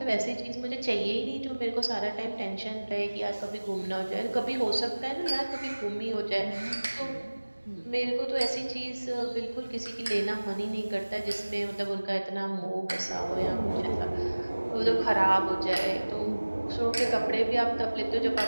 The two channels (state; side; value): inverted; both; correlation -1.00